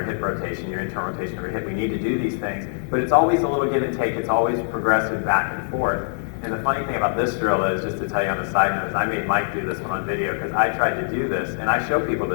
hip rotation, your internal rotation of your hip. We need to do these things. But it's always a little give and take. It's always progressive back and forth. And the funny thing about this drill is, just to tell you on a side note, is I made Mike do this one on video because I tried to do this, and I show people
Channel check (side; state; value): right; silent; digital silence